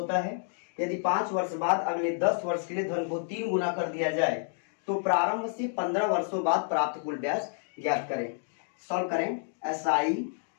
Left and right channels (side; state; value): right; silent; digital silence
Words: है। यदि 5 वर्ष बाद अगले 10 वर्ष के लिए धन को 3 गुना कर दिया जाए तो प्रारंभ से 15 वर्षों बाद प्राप्त कुल ब्याज ज्ञात करें। सॉल्व करें। SI